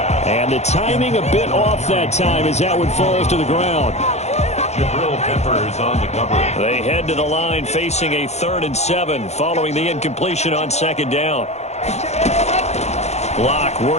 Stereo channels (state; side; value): late; right; 0.32 ms